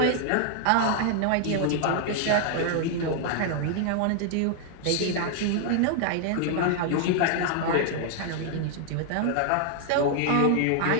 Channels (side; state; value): both; different; correlation 0.00